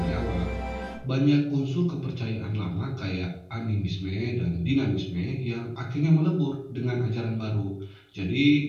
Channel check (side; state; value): both; identical; correlation 1.00